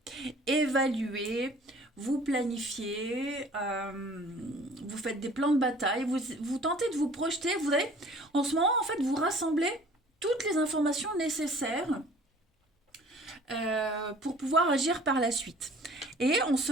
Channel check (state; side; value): normal; both; correlation 0.51